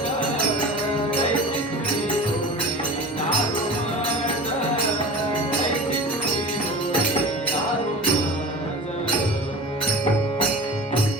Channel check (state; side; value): normal; both; correlation 0.35